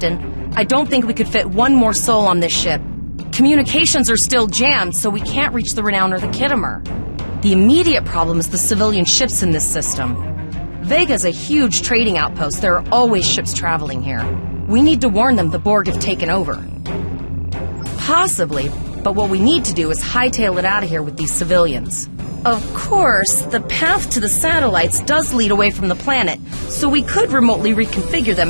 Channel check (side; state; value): both; inverted; correlation -1.00